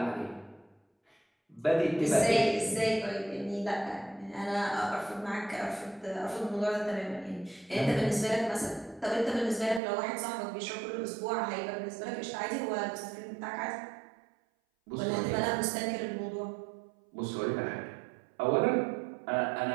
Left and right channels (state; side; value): drops out; left; at 9.8 s